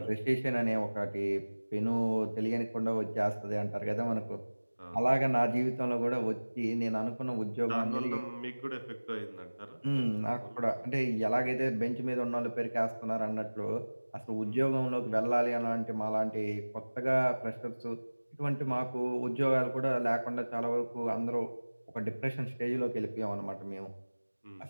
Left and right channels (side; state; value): both; inverted; correlation -1.00